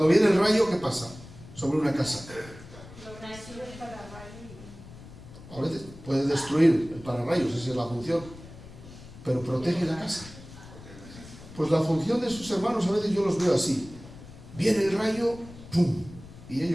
viene el rayo, ¿qué pasa? Sobre una casa. A veces puede destruir el pararrayos, esa es la función, pero protege la casa. Pues la función de sus hermanos a veces yo los veo así. Viene el rayo, ¡pum!, y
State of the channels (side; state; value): left; noise; rumble, 17 dB below the sound